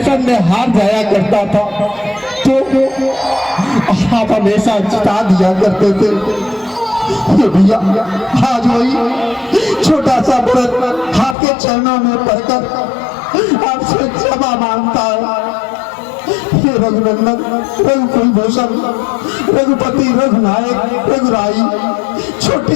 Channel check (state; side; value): drops out; right; at 11.4 s